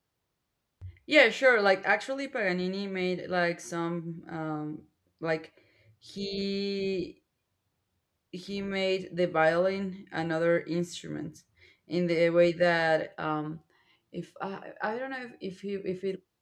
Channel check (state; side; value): identical; both; correlation 1.00